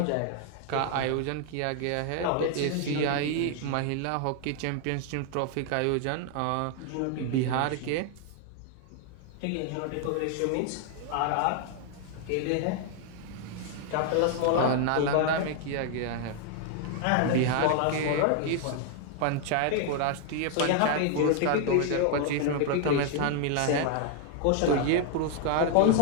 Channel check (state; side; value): different; both; correlation 0.00